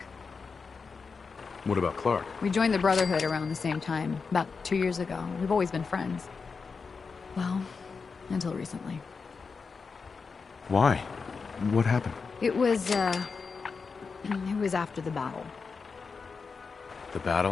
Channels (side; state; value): right; quieter; 5.0 dB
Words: What about Clark? We joined the Brotherhood around the same time, about 2 years ago. We've always been friends. Well, until recently. Why? What happened? It was after the battle. The